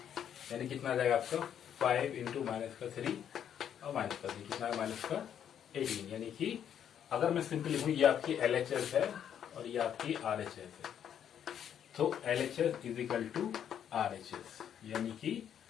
यानी कितना आ जाएगा आपका 5 इंटू -3 और -3 कितना है -18। यानी कि अगर मैं सिंपल लिखूँ, ये आपकी LHS है और ये आपकी RHS है। तो LHS is equal to RHS यानी कि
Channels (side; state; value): right; quieter; 9.2 dB